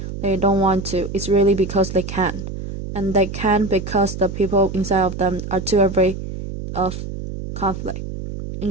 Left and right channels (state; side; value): noise; right; hum, 8 dB below the sound